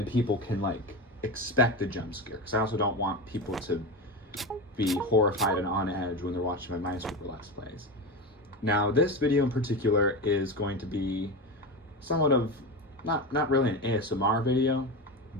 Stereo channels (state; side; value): normal; both; correlation 0.21